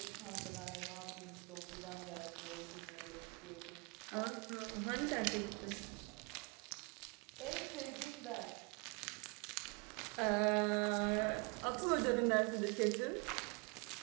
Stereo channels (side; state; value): left; quieter; 30.6 dB